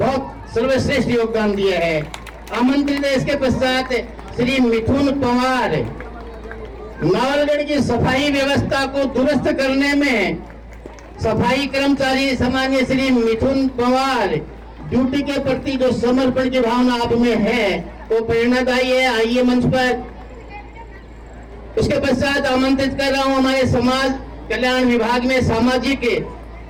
सर्वश्रेष्ठ योगदान दिया है। आमंत्रित है इसके पश्चात श्री मिथुन पवार, नावलगढ़ की सफाई व्यवस्था को दुरुस्त करने में सफाई कर्मचारी सम्मानीय श्री मिथुन पवार, ड्यूटी के प्रति जो समर्पण की भावना आप में है वो प्रेरणादायी है। आइए मंच पर। उसके पश्चात आमंत्रित कर रहा हूं हमारे समाज कल्याण विभाग में सामाजिक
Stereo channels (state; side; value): identical; both; correlation 1.00